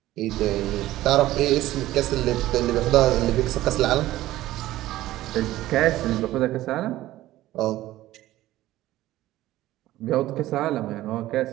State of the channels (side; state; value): left; quieter; 15.5 dB